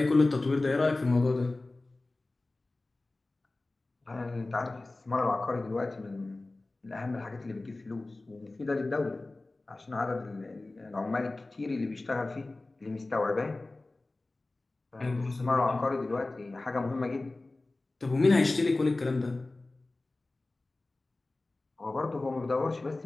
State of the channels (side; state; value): right; quieter; 3.0 dB